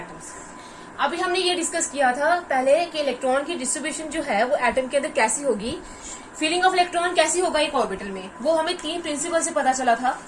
अभी हमने ये डिस्कस किया था पहले कि इलेक्ट्रॉन की डिस्ट्रीब्यूशन जो है वो एटम के अंदर कैसी होगी, फीलिंग ऑफ इलेक्ट्रॉन कैसी होगा एक ऑर्बिटल में। वो हमें तीन प्रिंसिपल से पता चला था।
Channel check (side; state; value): both; identical; correlation 1.00